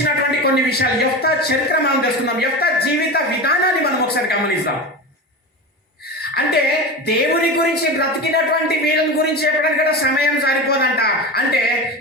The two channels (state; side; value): normal; both; correlation 0.25